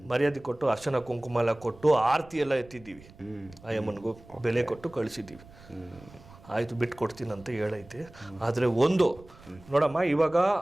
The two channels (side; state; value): right; noise; rumble, 22 dB below the sound